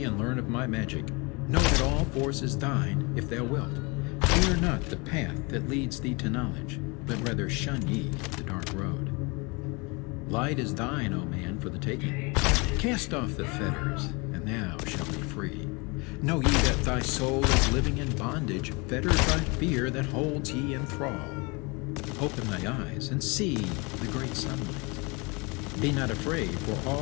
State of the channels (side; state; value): right; quieter; 28.4 dB